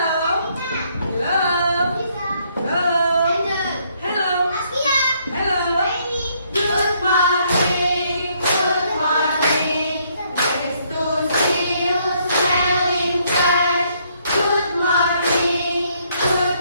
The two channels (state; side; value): inverted; both; correlation -0.70